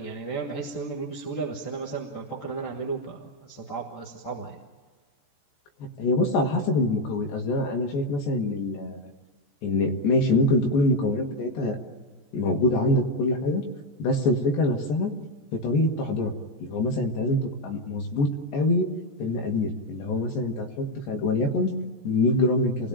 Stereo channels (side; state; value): right; late; 14 ms